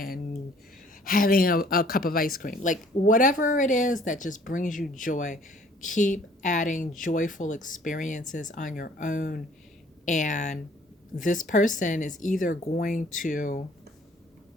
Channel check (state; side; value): normal; both; correlation 0.57